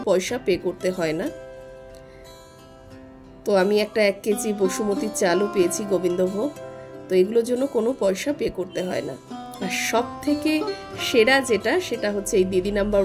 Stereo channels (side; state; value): both; identical; correlation 1.00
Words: পয়সা পে করতে হয় না। তো আমি একটা 1 কেজি বসুমতির চালও পেয়েছি গোবিন্দভোগ, তো এগুলোর জন্য কোনো পয়সা পে করতে হয় না। আর সব থেকে সেরা সেটা হচ্ছে এই দিদি নাম্বার